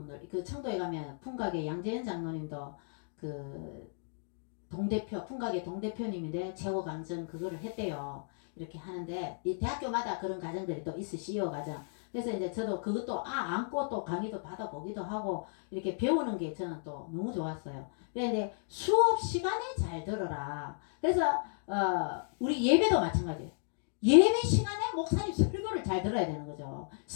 그 청도에 가면 풍각의 양재현 장로님도 그 동대표 풍각의 동대표님인데 최고 강정 그거를 했대요. 이렇게 하는데 이 대학교마다 그런 과정들이 또 있어 CEO 과정. 그래서 이제 저도 그것도 안고 또 강의도 받아보기도 하고 이렇게 배우는 게 저는 또 너무 좋았어요. 그런데 수업 시간에 잘 들어라. 그래서 우리 예배도 마찬가지예요. 예배 시간에 목사님 설교를 잘 들어야 되는 거죠.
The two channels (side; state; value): right; silent; digital silence